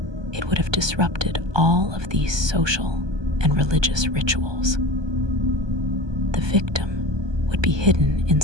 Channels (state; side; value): late; left; 1.2 ms